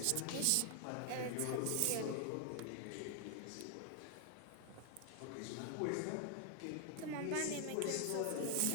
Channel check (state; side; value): different; both; correlation 0.00